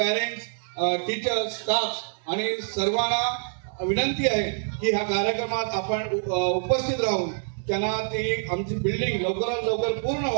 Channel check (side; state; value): left; silent; digital silence